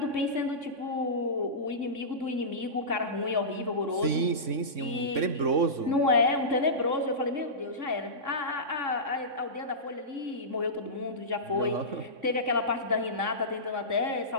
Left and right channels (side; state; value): left; late; 3.6 ms